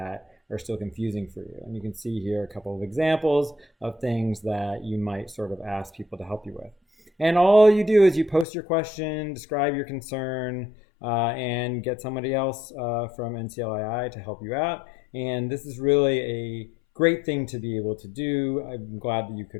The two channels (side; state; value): right; drops out; at 8.5 s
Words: are still confusing for you. And you can see here a couple of examples of things that you might sort of ask people to help you with. And all you do is you post your question, describe your concern, and get somebody else from NCLII to help you out. And this is really a great thing to be able to do. I'm glad that you